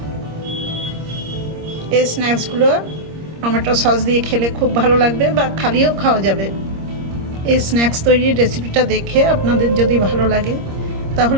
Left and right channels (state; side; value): late; left; 26 ms